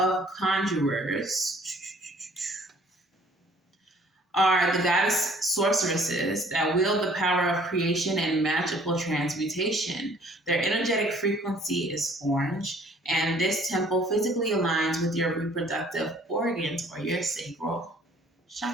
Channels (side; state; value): both; normal; correlation 0.57